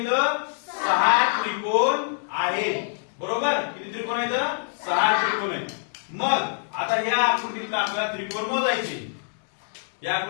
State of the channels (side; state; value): right; silent; 62 dB below the other